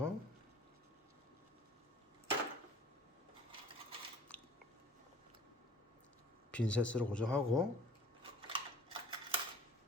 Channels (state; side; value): normal; both; correlation 0.49